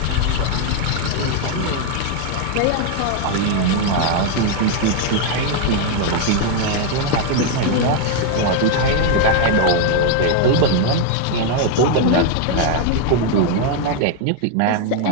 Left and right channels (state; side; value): different; both; correlation 0.01